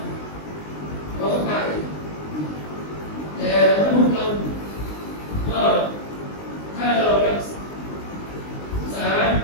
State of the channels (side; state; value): right; late; 19 ms